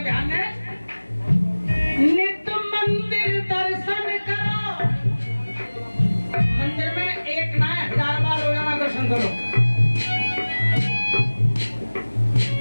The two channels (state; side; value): inverted; both; correlation -1.00